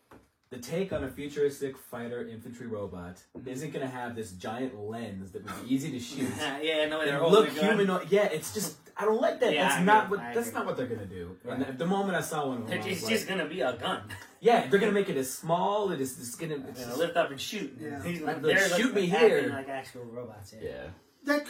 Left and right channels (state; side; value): identical; both; correlation 1.00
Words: the take on a futuristic fighter infantry robot isn't going to have this giant lens that would be easy to shoot. Yeah, no, they're and look humanoid. Yeah, it's just I don't like that. Yeah, That's not what they're going to do. Right. And at the moment I saw one of them, It's just going to be a gun. yeah, they're going to make it as small. It's going to lift up and shoot. Yeah. He's Like, they're shoot me acting here. like actual robots. yeah. That